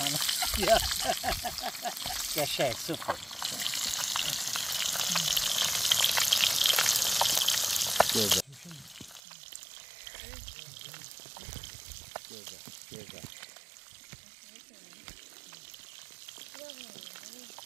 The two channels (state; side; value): drops out; left; at 9.2 s